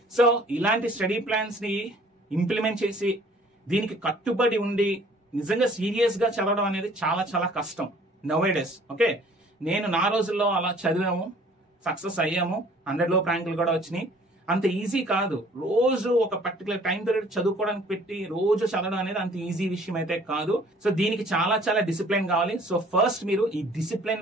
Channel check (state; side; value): normal; both; correlation 0.55